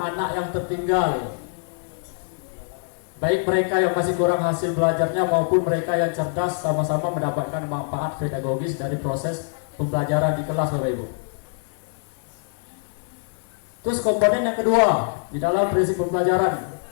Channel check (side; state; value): right; silent; digital silence